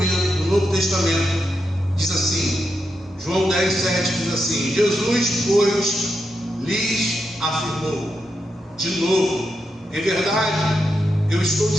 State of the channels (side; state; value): both; normal; correlation 0.85